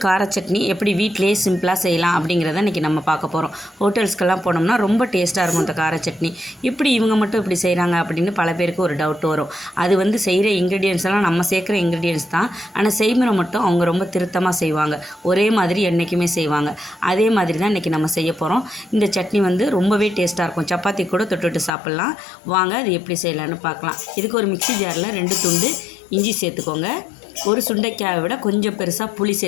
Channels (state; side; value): drops out; right; at 21.7 s